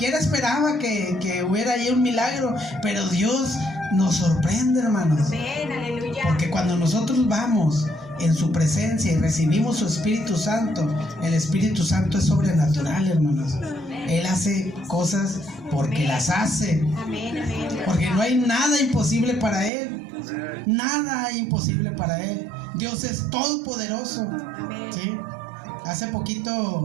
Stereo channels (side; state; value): left; drops out; at 19.7 s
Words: esperaba que hubiera ahí un milagro. Pero Dios nos sorprende, hermanos. Porque cuando nosotros vamos en su presencia y recibimos su Espíritu Santo, el Espíritu Santo es sobrenatural, hermanos. Él hace cosas porque las hace. Porque no hay nada imposible para Él. Nada hay imposible para Él. Dios es todopoderoso. ¿Sí? Hace